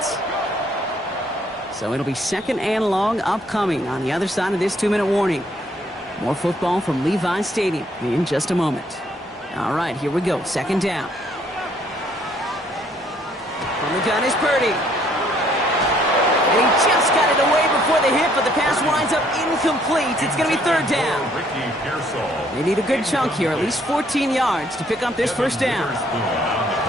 So it'll be 2nd and long upcoming on the other side of this 2-minute warning. More football from Levi Stadium in just a moment. All right, here we go. 2nd down. From the gun is Purdy. And he just got it away before the hit, but the pass winds up incomplete. It's going to be 3rd down. They need a good chunk here, at least 14 yards to pick up this 1st down.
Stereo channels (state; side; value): normal; both; correlation 0.65